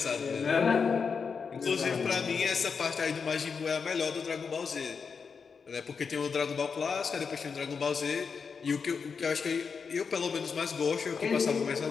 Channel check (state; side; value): quieter; right; 5.7 dB